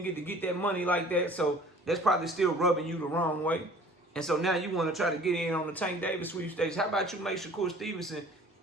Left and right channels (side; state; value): both; normal; correlation 0.49